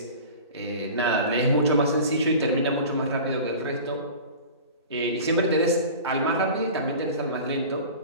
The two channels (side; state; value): both; inverted; correlation -0.38